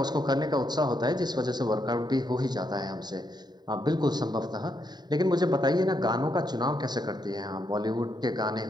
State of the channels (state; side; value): late; left; 0.20 ms